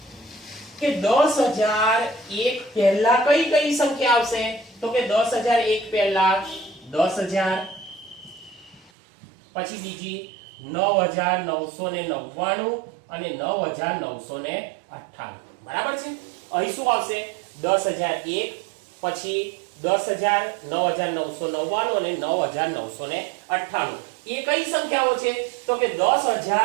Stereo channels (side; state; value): left; drops out; at 8.9 s